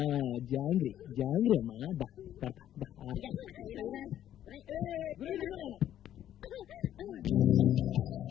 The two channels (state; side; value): quieter; right; 11.4 dB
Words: జాంగ్రీ జాంగ్రీ అమ్మా, దా పెడతా దా.